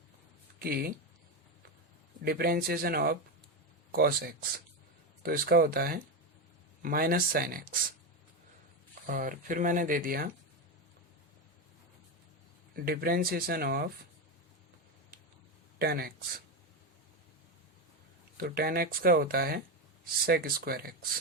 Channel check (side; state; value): both; normal; correlation 0.13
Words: कि डिफरेंशिएशन ऑफ कॉस एक्स, तो इसका होता है माइनस साइन एक्स। और फिर मैंने दे दिया डिफरेंशिएशन ऑफ टेन एक्स, तो टेन एक्स का होता है सेक स्क्वायर